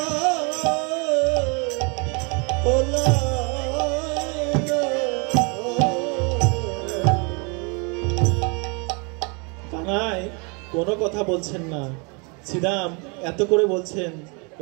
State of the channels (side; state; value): left; quieter; 32.5 dB